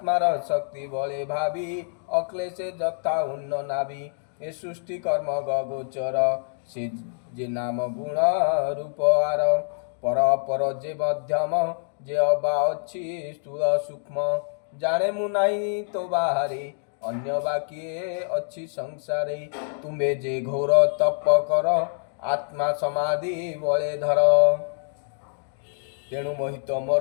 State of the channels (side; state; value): right; silent; digital silence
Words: शक्ति बले भावी अक्लेशे जथा उन्न नाभि ए सृष्टि कर्म गोचर से जे नाम गुण रूप आर पर पर जे मध्यम जे अबा अच्छी स्थूल सूक्ष्म जाने मु नाही तो बाहरे अन्य बाकिए अच्छी संसारे तुम्हे जे घोर तप कर आत्मा समाधि बले धर तेणु मोहित